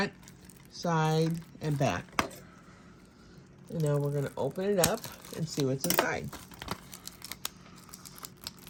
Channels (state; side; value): identical; both; correlation 1.00